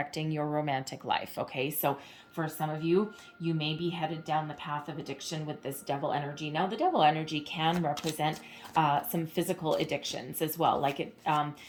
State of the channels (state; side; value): identical; both; correlation 1.00